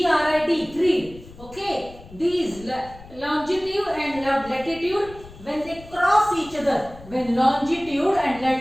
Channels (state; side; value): noise; left; rumble, 19 dB below the sound